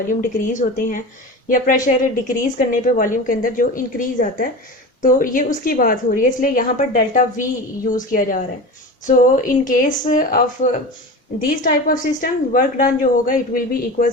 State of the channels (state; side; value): normal; both; correlation 0.30